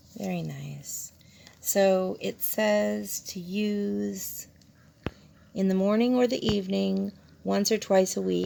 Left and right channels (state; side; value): identical; both; correlation 1.00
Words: Very nice. So it says to use in the morning or the evening, once or twice a